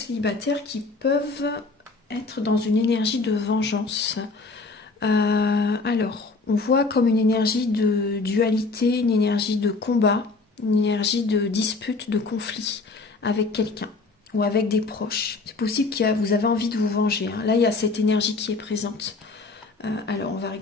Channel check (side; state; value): right; quieter; 3.8 dB